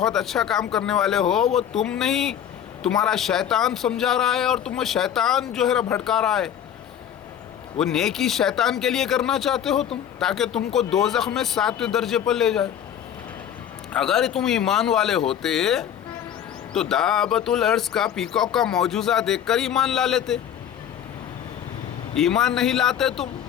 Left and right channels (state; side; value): quieter; right; 9.5 dB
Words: अच्छा काम करने वाले हो, वो तुम नहीं, तुम्हारा शैतान समझा रहा है और तुम्हें शैतान जो है भटका रहा है। वो नेकी शैतान के लिए करना चाहते हो तुम, ताकि तुमको दोज़ख में 7वें दर्जे पर ले जाए। अगर तुम ईमान वाले होते तो दाबतुल अर्ज़ का, पीकॉक का मौजूज़ा देखकर ईमान ला लेते। ईमान नहीं लाते तुम,